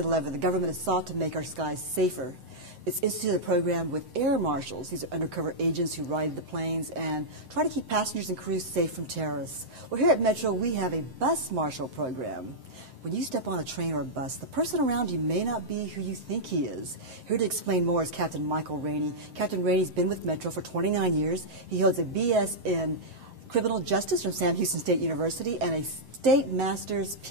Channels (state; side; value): late; left; 7.7 ms